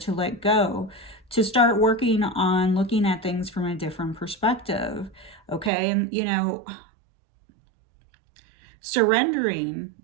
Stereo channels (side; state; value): left; drops out; at 5.7 s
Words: let go, to start working on looking at things from a different perspective, okay? And, you know, surrendering